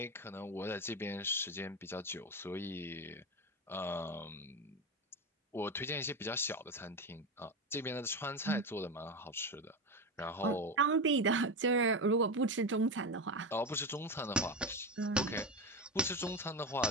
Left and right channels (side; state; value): both; normal; correlation 0.18